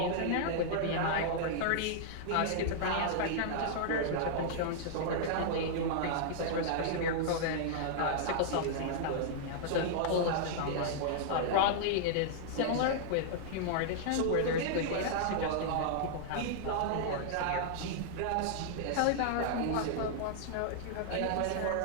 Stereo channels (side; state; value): both; different; correlation -0.01